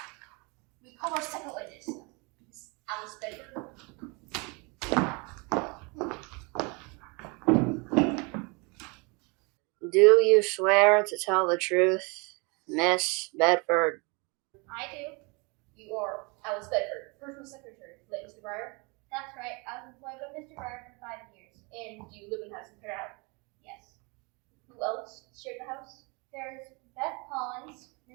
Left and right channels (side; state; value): left; quieter; 30.2 dB